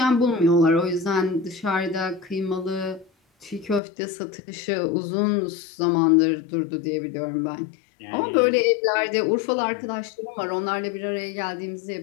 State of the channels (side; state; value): right; drops out; at 3.8 s